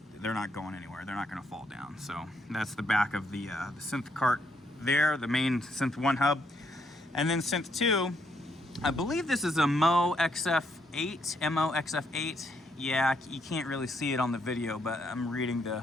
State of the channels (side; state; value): both; normal; correlation 0.74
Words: they're not going anywhere. They're not going to fall down. So that's the back of the synth cart there, the main Synth 1 hub. And then Synth 2, I believe this is a MO XF8. Yeah, you can't really see it on the video, but I'm reading